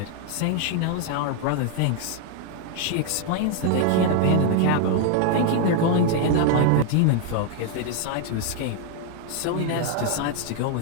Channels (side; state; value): both; different; correlation 0.00